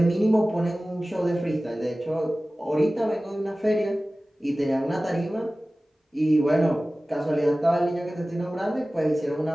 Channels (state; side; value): normal; both; correlation 0.97